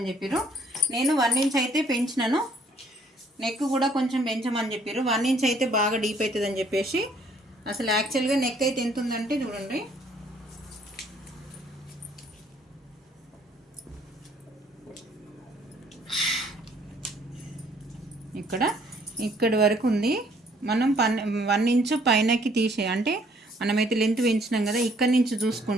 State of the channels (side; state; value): both; normal; correlation 0.62